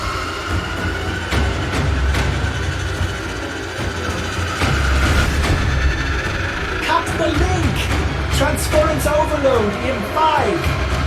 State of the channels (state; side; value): identical; both; correlation 1.00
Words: Cut the link! Transference overload in 5,